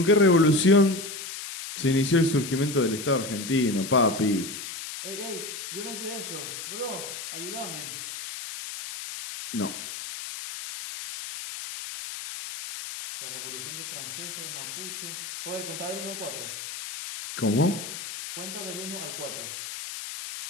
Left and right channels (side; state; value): left; noise; hiss, 8 dB below the sound